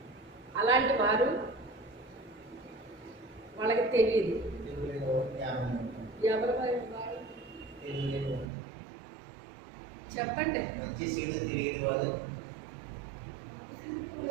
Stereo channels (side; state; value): left; drops out; at 8.5 s